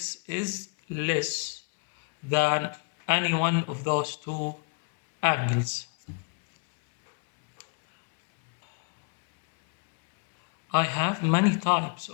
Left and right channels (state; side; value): quieter; right; 37.4 dB